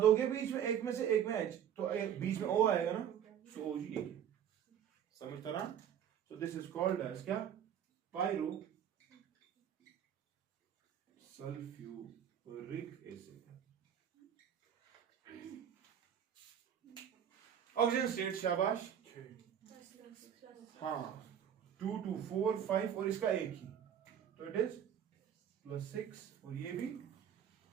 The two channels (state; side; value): quieter; left; 9.2 dB